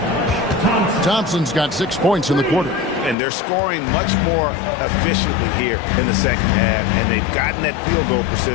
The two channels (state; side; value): drops out; right; at 3.2 s